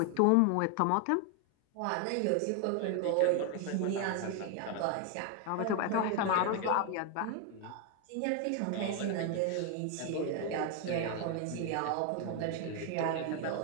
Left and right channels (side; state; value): both; different; correlation 0.01